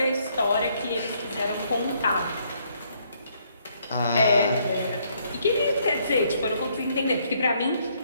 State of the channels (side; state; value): both; inverted; correlation -0.69